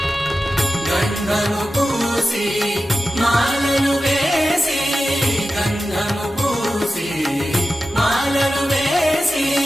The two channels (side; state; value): both; normal; correlation 0.93